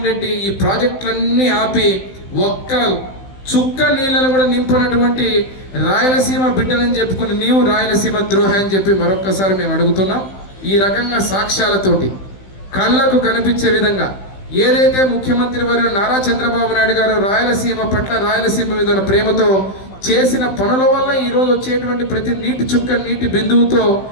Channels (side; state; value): right; late; 15 ms